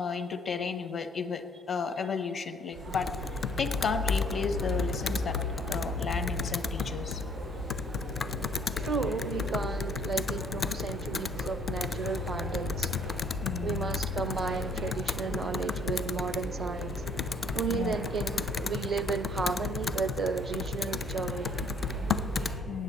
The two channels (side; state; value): both; normal; correlation 0.61